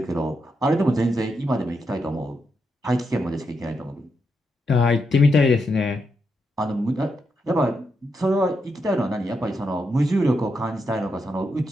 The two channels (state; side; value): normal; both; correlation 0.83